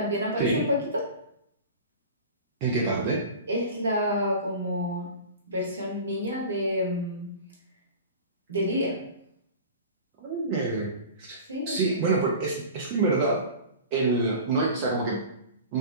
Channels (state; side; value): inverted; both; correlation -0.36